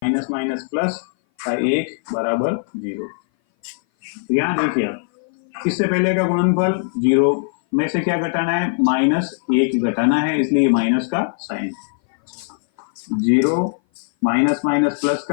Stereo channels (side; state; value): right; silent; 58 dB below the other